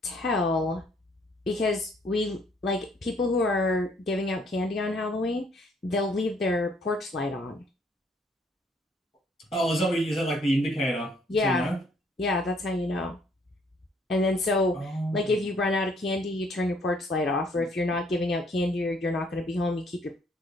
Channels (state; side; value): normal; both; correlation 0.65